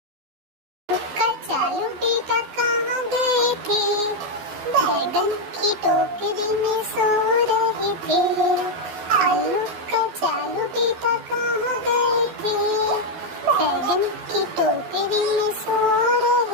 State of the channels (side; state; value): left; late; 12 ms